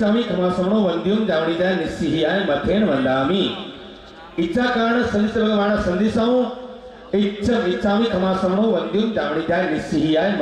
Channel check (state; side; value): identical; both; correlation 1.00